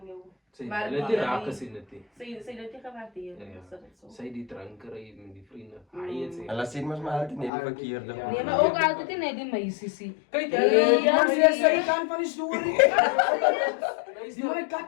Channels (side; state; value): right; drops out; at 7.5 s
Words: jou. Zij Maar willen die raken zien het niet. Zij dat je gewaardeerd. Ja, ja. Is dat zo? Zij die drankerij met die vrienden. Hij het En zegt. laat zien, maar altijd niet die verkeerde. Ja. Nee, maar ook altijd in die meisjes. Kijk, Die man is de kant van die story. Die man